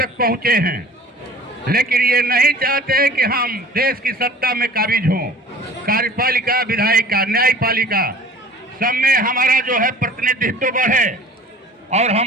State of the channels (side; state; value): both; normal; correlation 0.45